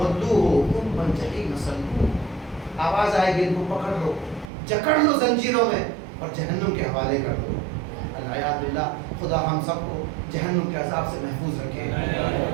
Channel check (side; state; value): left; drops out; at 4.5 s